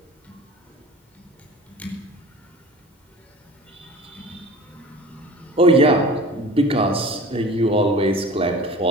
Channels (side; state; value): both; normal; correlation 0.40